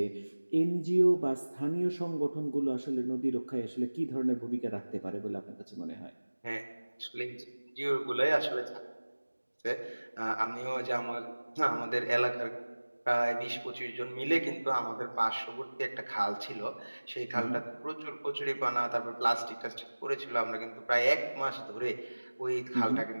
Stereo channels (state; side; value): inverted; both; correlation -1.00